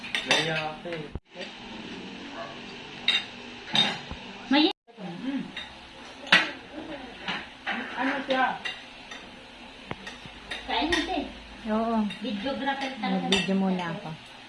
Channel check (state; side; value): identical; both; correlation 1.00